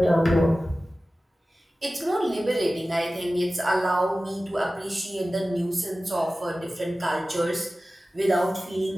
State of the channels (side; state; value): both; normal; correlation 0.96